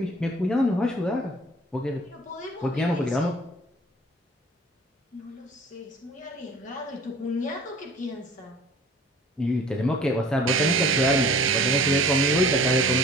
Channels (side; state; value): both; normal; correlation 0.47